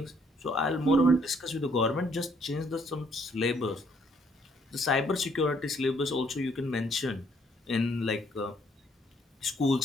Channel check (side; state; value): both; normal; correlation 0.67